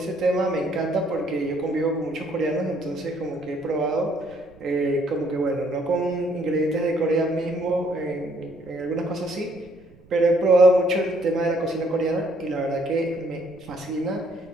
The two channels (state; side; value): noise; right; rumble, 26 dB below the sound